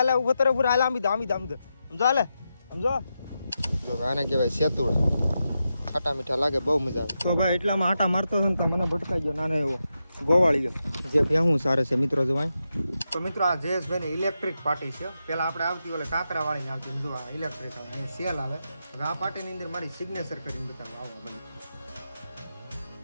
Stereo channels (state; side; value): inverted; both; correlation -0.88